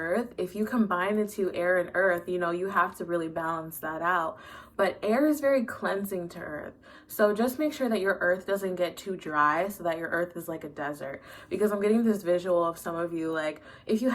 if you combine the two, air and earth, you know, you have to really balance that out. But air is very cleansing to earth. So just make sure that your earth doesn't get too dry so that your earth is like a desert. Because I'm getting this visual of some of you, like, if you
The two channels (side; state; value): both; identical; correlation 1.00